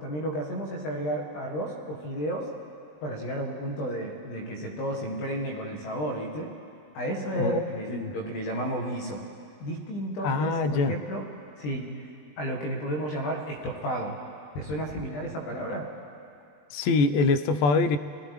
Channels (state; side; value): late; right; 20 ms